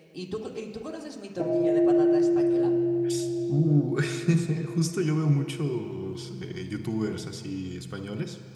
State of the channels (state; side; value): identical; both; correlation 1.00